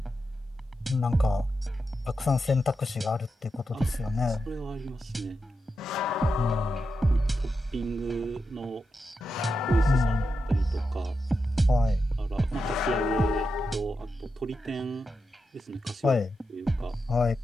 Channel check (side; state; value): both; normal; correlation 0.88